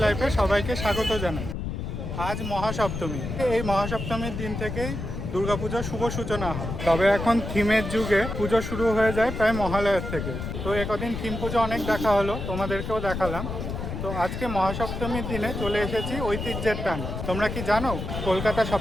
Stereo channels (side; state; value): left; noise; rumble, 5 dB below the sound